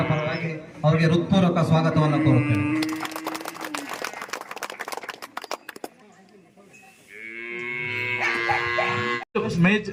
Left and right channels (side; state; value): both; identical; correlation 1.00